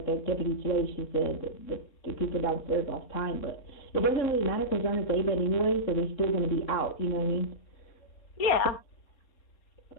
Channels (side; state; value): right; late; 4.2 ms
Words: the deputy today, she said that the people downstairs lost time, but it doesn't really matter because they're on a day bed anyway, so they're still going to be out. You know what I mean? Yeah.